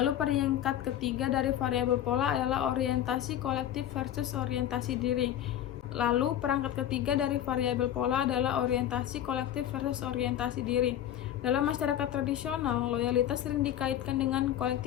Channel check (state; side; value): quieter; right; 11.3 dB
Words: peringkat ketiga dari variabel pola adalah orientasi kolektif versus orientasi diri. Lalu perangkat ketiga dari variabel pola adalah orientasi kolektif versus orientasi diri. Dalam masyarakat tradisional, loyalitas sering dikaitkan dengan